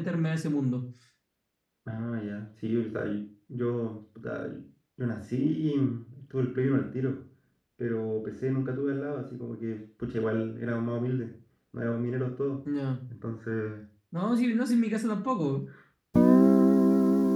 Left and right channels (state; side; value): identical; both; correlation 1.00